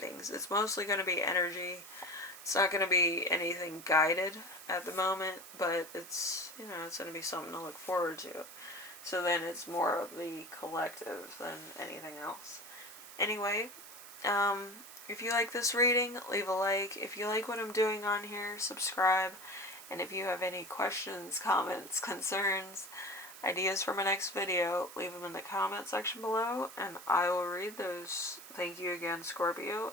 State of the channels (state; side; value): noise; right; hiss, 15 dB below the sound